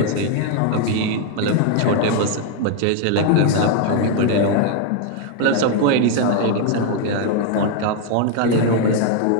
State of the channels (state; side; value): different; both; correlation 0.00